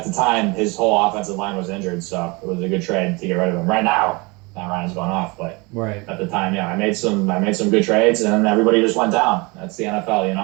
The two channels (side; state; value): left; quieter; 26.8 dB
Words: the time his whole offensive line was injured, so it was a good trade to get rid of him. Right now, Matt Ryan's gone off, but at the time, I made some good trades, and then everybody just went down. That's the